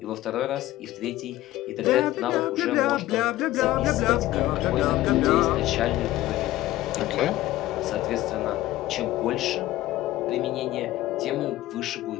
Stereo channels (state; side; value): quieter; right; 15.9 dB